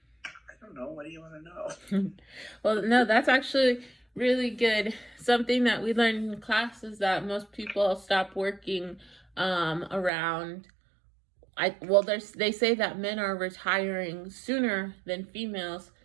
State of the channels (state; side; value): drops out; left; at 10.1 s